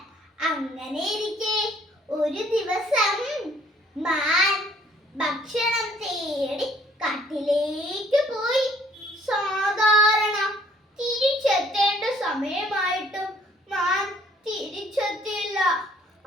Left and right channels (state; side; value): normal; both; correlation 0.61